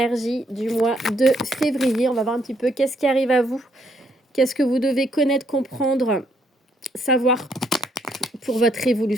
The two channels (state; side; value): normal; both; correlation 0.72